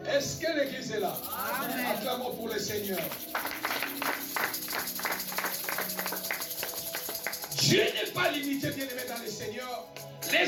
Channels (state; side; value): identical; both; correlation 1.00